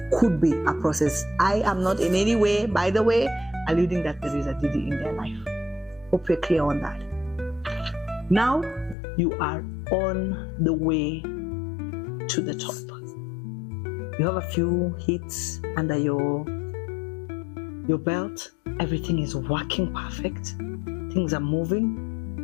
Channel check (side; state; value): right; drops out; at 9.0 s